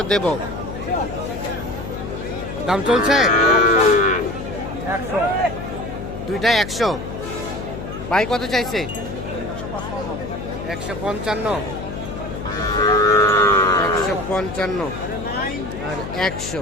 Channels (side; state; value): left; noise; hum, 8 dB below the sound